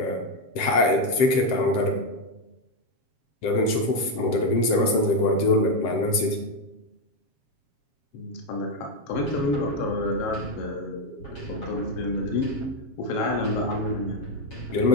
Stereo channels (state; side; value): late; right; 7.7 ms